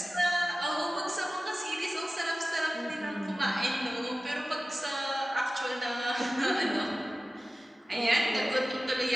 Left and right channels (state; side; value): normal; both; correlation 0.96